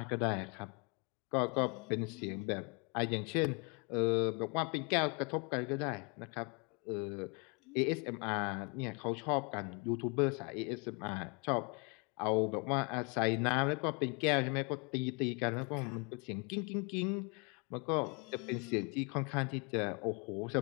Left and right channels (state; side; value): quieter; right; 32.8 dB